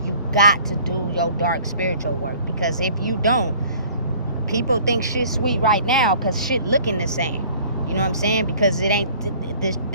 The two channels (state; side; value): inverted; both; correlation -0.52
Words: You got to do your dark spiritual work, because if you don't, people think shit's sweet right now because shit looking the same. You know what I'm saying? Because it ain't,